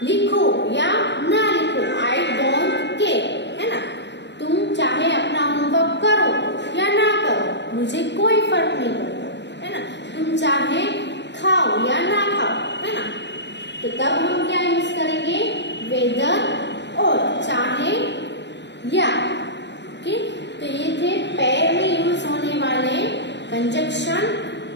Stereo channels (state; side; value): late; right; 0.51 ms